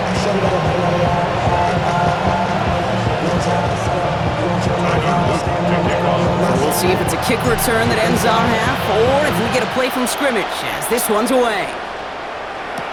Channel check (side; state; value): both; identical; correlation 1.00